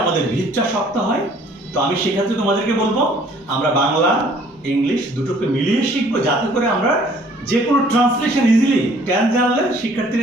আমাদের ভিতটা শক্ত হয়। তো আমি সেক্ষেত্রে তোমাদেরকে বলবো আমরা বাংলা ইংলিশ দুটোকে মিলিয়ে শিখবো, যাতে করে আমরা যে কোনো ট্রান্সলেশন ইজিলি টেন্স জানলে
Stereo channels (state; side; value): normal; both; correlation 0.57